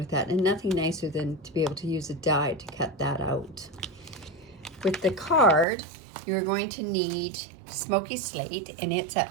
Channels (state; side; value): drops out; left; at 5.7 s